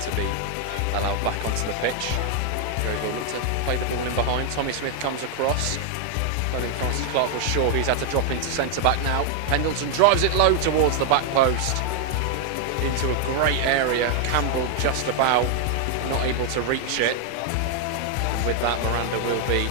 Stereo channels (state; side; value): different; both; correlation 0.00